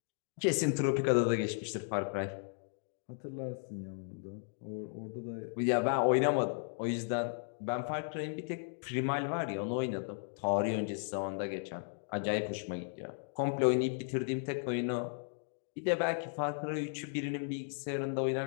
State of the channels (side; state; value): right; silent; digital silence